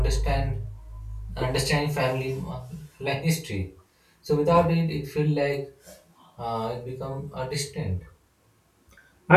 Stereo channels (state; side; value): identical; both; correlation 1.00